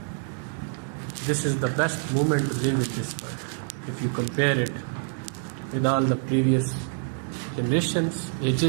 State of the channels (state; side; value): silent; left; 58 dB below the other